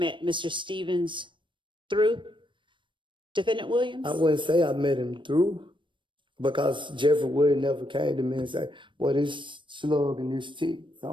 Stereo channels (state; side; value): late; left; 0.24 ms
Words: Mr. Stevens through Defendant Williams? I wouldn't say I met him through, because Jeffrey Woody never came to me and said, well, this slug and this tick.